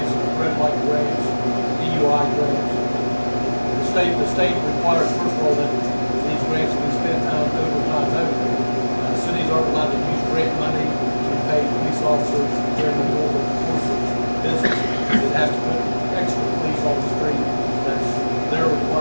the red light grants, DUI grants. The state requires, first of all, that these grants be spent out over time. Cities aren't allowed to use grant money to pay police officers during the normal course of business. It has to put extra police on the street. That's their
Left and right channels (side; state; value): both; inverted; correlation -1.00